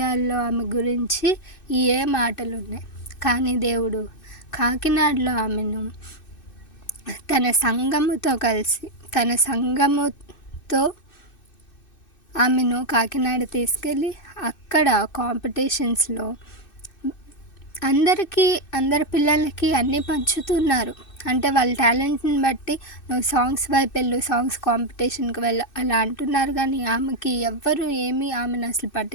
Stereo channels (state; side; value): late; right; 2.6 ms